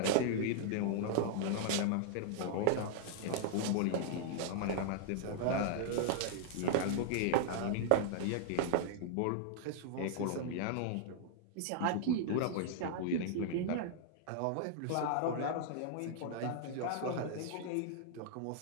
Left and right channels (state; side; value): different; both; correlation -0.01